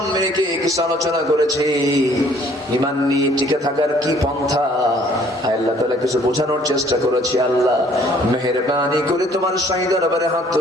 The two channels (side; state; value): both; normal; correlation 0.59